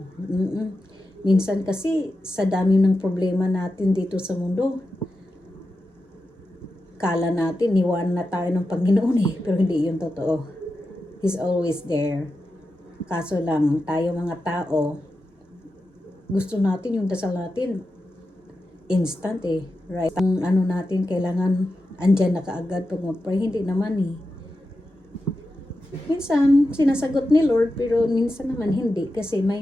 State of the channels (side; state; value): both; normal; correlation 0.90